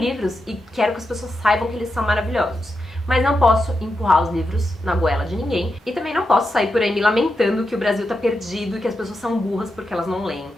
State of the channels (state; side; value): normal; both; correlation 0.87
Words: e quero que as pessoas saibam que eles são maravilhosos. Mas não posso empurrar os livros na goela de ninguém e também não posso sair por aí me lamentando que o Brasil tá perdido e que as pessoas são burras porque elas não leem.